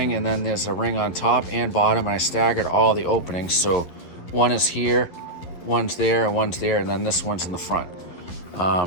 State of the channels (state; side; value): late; right; 11 ms